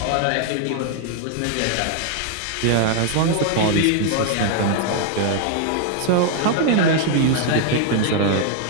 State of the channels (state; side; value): different; both; correlation 0.00